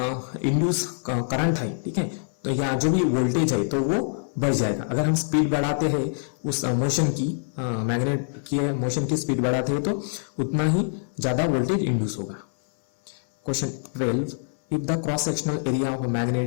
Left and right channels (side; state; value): right; silent; 60 dB below the other